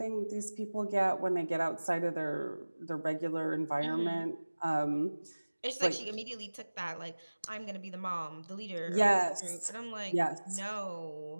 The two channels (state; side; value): inverted; both; correlation -1.00